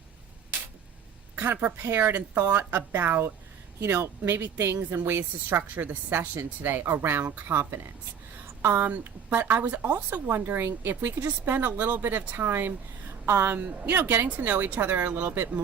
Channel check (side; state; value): left; quieter; 7.5 dB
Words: kind of prepared and thought about, maybe things and ways to structure the session today around confidence. But I was also wondering if we could just spend a little bit of time, getting to know each other a little bit